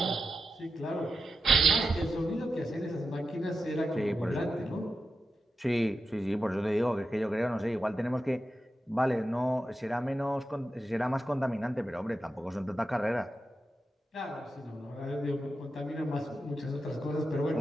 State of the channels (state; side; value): normal; both; correlation 0.90